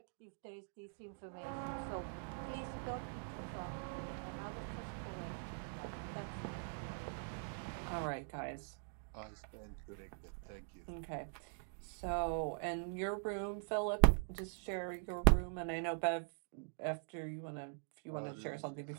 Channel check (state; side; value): silent; left; digital silence